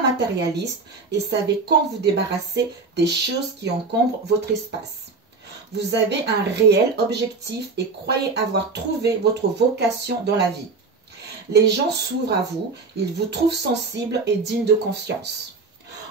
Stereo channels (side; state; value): left; quieter; 4.1 dB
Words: matérialiste et savez quand vous débarrasser des choses qui encombrent votre espace. Vous avez un réel objectif et croyez avoir trouvé votre vocation dans la vie. Les gens s'ouvrent à vous, ils vous trouvent sensible et digne de confiance.